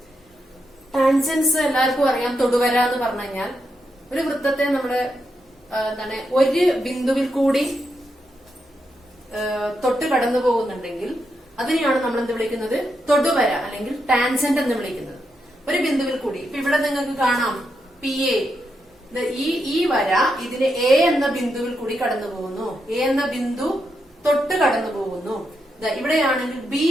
ടാൻജൻസ് എല്ലാവർക്കും അറിയാം. തൊടുവര എന്ന് പറഞ്ഞു കഴിഞ്ഞാൽ ഒരു വൃത്തത്തെ നമ്മുടെ ഒരു ബിന്ദുവിൽ കൂടി തൊട്ട് കടന്നു പോകുന്നുണ്ടെങ്കിൽ അതിനെയാണ് നമ്മൾ എന്ത് വിളിക്കുന്നത്? തൊടുവര അല്ലെങ്കിൽ ടാൻജന്റ് എന്ന് വിളിക്കുന്നത്. ഒരു ബിന്ദുവിൽ കൂടി ഇപ്പൊ ഇവിടെ നിങ്ങൾക്ക് കാണാം PA, ഈ വര ഇതിന് A എന്ന ബിന്ദുവിൽ കൂടി കടന്നു പോകുന്നു. A എന്ന ബിന്ദു തൊട്ട് കടന്നു പോകുന്നു. ഇവിടെയാണെങ്കിൽ B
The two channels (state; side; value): normal; both; correlation 0.83